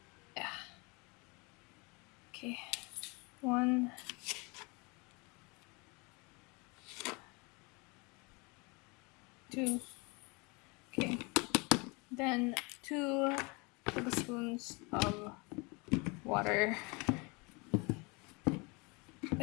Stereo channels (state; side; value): quieter; right; 28.7 dB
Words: Yeah. Okay. 1. 2. Okay. Then 2 tablespoons of water.